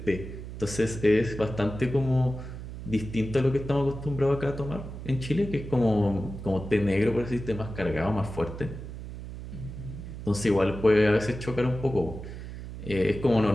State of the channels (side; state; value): right; noise; hum, 10 dB below the sound